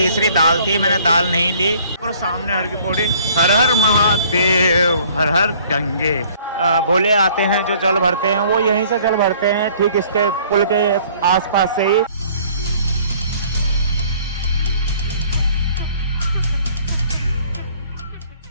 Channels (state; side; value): inverted; both; correlation -0.56